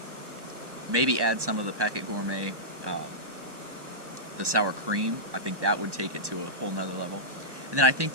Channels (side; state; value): left; late; 1.1 ms